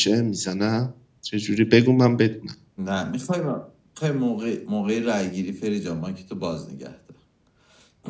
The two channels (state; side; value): identical; both; correlation 1.00